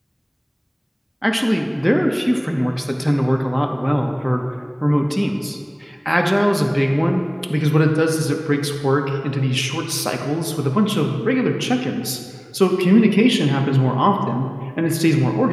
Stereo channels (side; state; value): both; identical; correlation 1.00